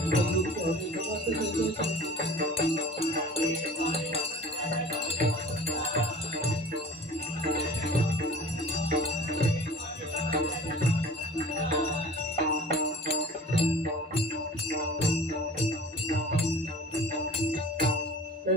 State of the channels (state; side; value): normal; both; correlation 0.44